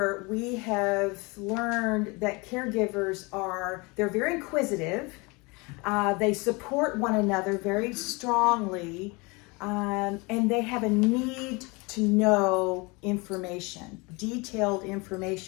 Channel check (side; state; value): right; quieter; 27.2 dB